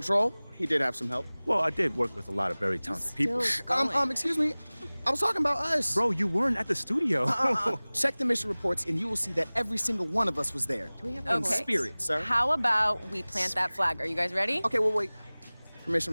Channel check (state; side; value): inverted; both; correlation -1.00